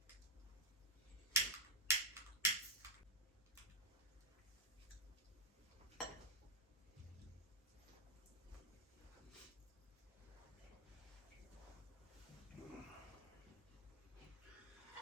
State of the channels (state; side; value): normal; both; correlation -0.04